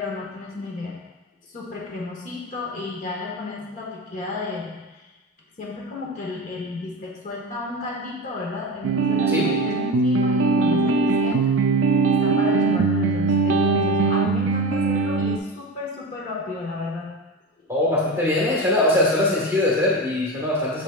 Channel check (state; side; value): normal; both; correlation 0.24